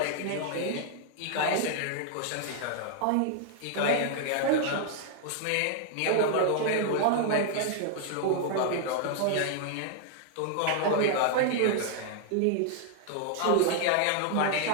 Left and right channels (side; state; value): both; different; correlation 0.00